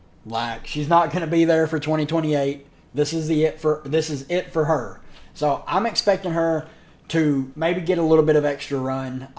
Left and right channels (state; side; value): identical; both; correlation 1.00